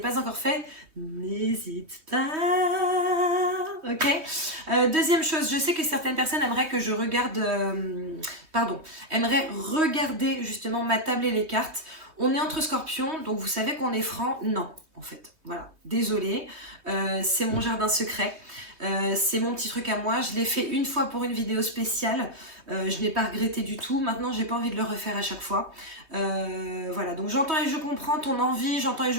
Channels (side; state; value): left; late; 3.2 ms